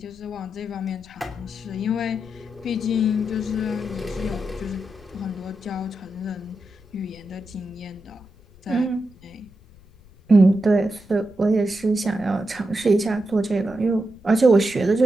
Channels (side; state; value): left; noise; rumble, 24 dB below the sound